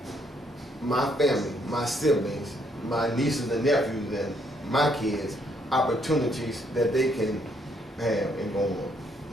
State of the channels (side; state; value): both; normal; correlation 0.70